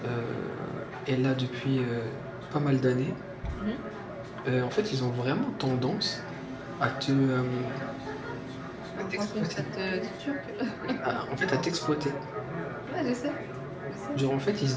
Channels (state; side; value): identical; both; correlation 1.00